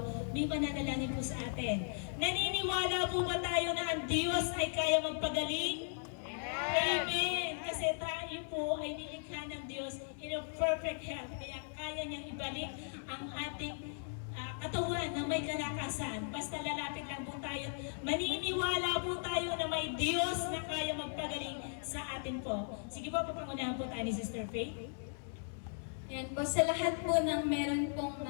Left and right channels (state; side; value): silent; right; digital silence